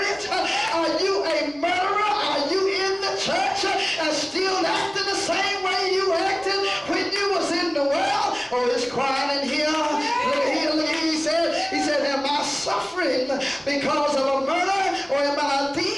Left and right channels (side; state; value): left; noise; rumble, 28 dB below the sound